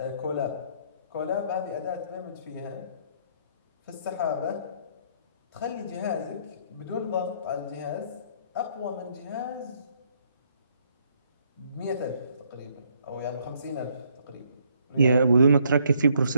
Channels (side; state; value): both; inverted; correlation -0.69